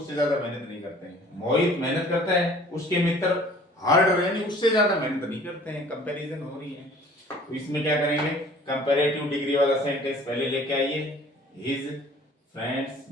ज्यादा मेहनत नहीं करते हैं। मोहित मेहनत करता है, उसके मित्र हार्डर यानी उससे ज्यादा मेहनत नहीं करते हैं, कंपैरिजन हो रही है। तो इसमें क्या करेंगे, कंपैरेटिव डिग्री वाला सेंटेंस पहले लेके आइए, his friends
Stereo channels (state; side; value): normal; both; correlation 0.51